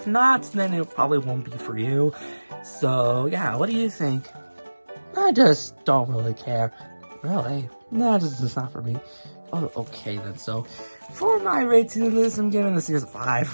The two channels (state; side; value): inverted; both; correlation -1.00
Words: not, then it probably won't be for you. So yeah, what do you think? I just don't really care. Really? No, it's not for me. Oh, okay then. So, for my rating of this, I'm giving this series a